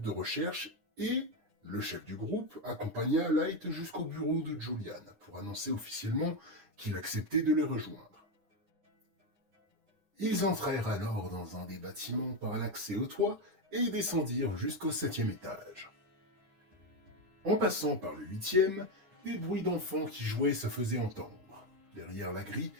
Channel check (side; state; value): left; late; 9.8 ms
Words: de recherche et le chef du groupe accompagna Light jusqu'au bureau de Julian pour annoncer officiellement qu'il acceptait de les rejoindre. Ils entrèrent alors dans un des bâtiments par l'accès au toit et descendirent jusqu'au 7e étage. En passant par le 8e, des bruits d'enfants qui jouaient se faisaient entendre, derrière la grille